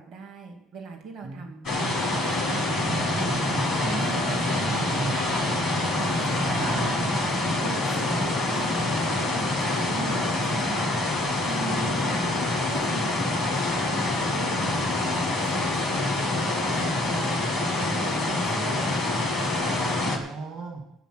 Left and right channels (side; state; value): both; normal; correlation 0.61